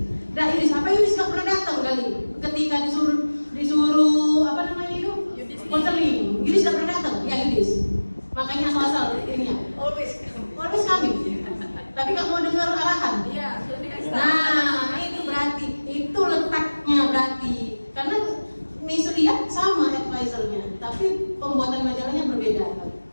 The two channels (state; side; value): inverted; both; correlation -1.00